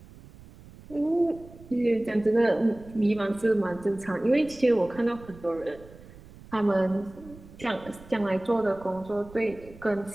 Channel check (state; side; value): noise; right; rumble, 20 dB below the sound